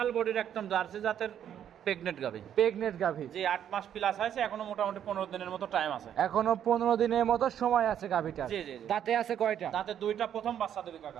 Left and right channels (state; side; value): quieter; left; 9.7 dB